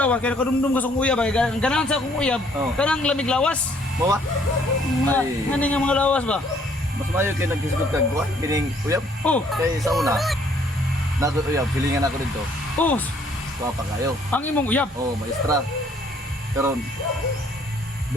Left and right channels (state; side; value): normal; both; correlation 0.63